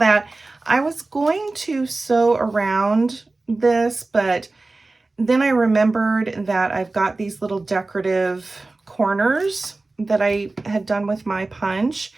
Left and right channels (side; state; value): left; quieter; 3.3 dB